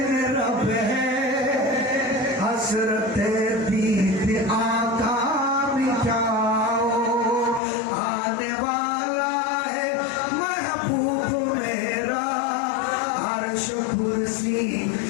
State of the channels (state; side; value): drops out; right; at 7.6 s